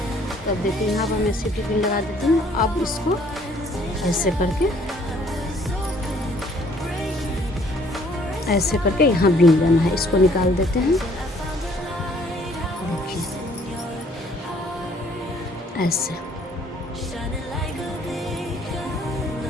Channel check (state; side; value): normal; both; correlation 0.61